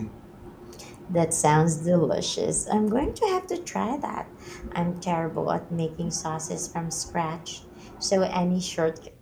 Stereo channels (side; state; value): both; identical; correlation 1.00